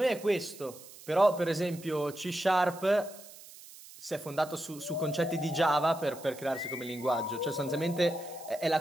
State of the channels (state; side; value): noise; right; hiss, 18 dB below the sound